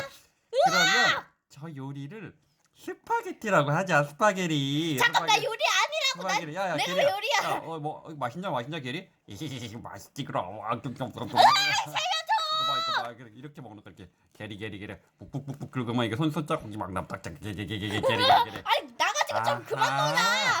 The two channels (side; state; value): both; identical; correlation 1.00